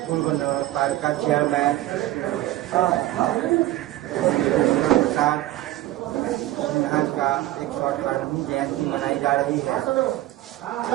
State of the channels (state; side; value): quieter; left; 15.8 dB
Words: पूर्व नगर पालिका चेयरमैन सिन्हा का 118वीं जयंती मनाई जा रही है,